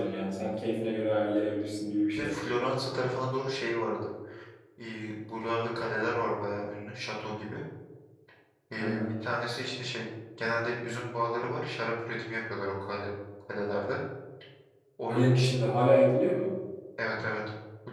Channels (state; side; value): identical; both; correlation 1.00